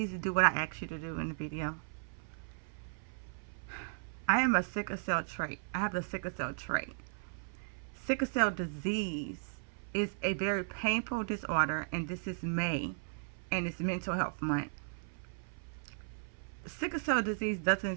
do what I asked you to do in the video? I am a sickle cell trait. I have the sickle cell trait. Sickle cell disease is a very painful disorder, and this is May, and it's Mental Health Month. Sickle cell disease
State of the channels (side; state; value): left; silent; 54 dB below the other